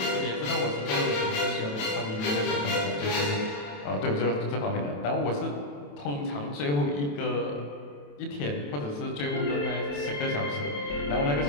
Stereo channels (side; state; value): right; late; 28 ms